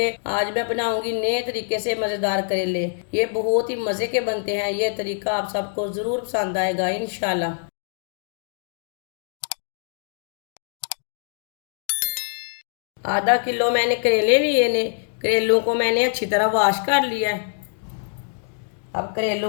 आज मैं बनाऊंगी नए तरीके से मज़ेदार करेले। ये बहुत ही मज़े के बनते हैं। ये तरीका आप सबको ज़रूर पसंद आएगा इंशाल्लाह। आधा किलो मैंने करेले लिए ने। करेलों को मैंने अच्छी तरह वॉश कर लिया है। अब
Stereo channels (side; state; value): right; silent; digital silence